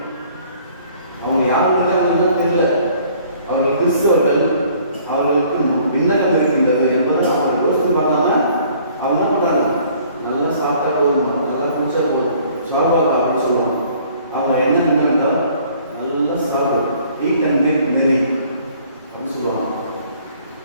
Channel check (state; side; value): inverted; both; correlation -0.57